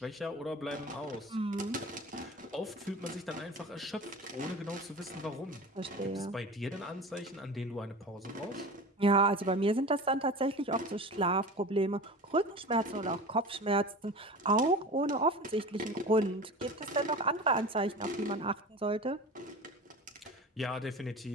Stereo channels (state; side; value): normal; both; correlation 0.34